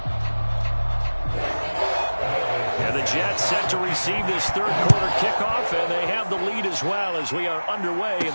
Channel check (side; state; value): both; inverted; correlation -1.00